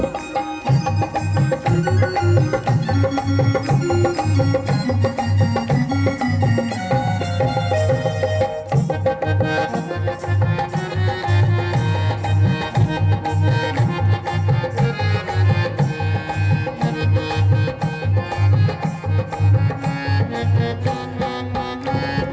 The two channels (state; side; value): identical; both; correlation 1.00